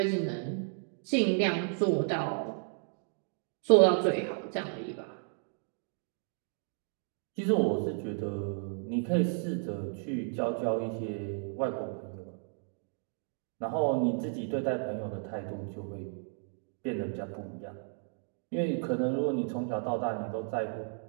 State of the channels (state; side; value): silent; left; 56 dB below the other